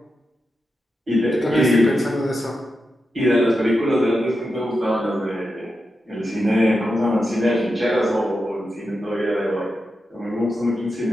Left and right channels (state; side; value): normal; both; correlation 0.89